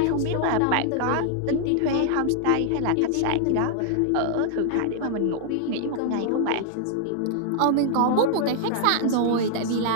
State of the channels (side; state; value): both; different; correlation -0.01